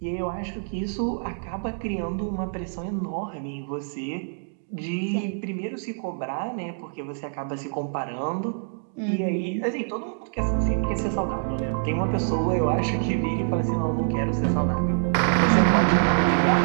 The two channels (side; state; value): left; silent; digital silence